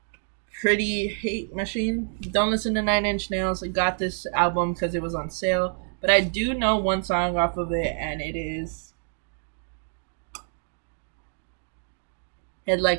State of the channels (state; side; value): silent; left; digital silence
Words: Pretty Hate Machine. Don't listen to 9 Inch Nails. I got this album because it was on sale. But I do know one song off of it, and it is Head